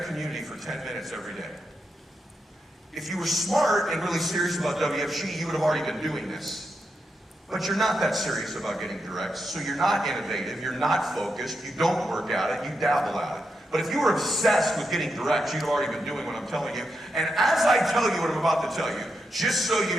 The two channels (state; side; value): normal; both; correlation 0.85